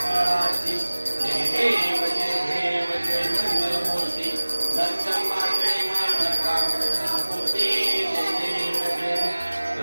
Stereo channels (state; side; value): inverted; both; correlation -1.00